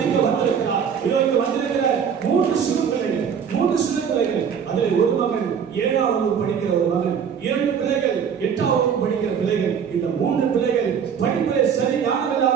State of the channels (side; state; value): left; quieter; 7.4 dB